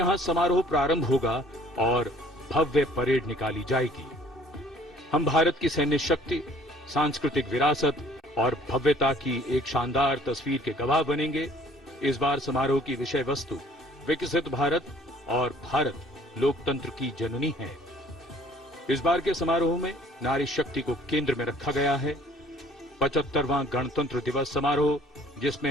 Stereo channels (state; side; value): normal; both; correlation 0.55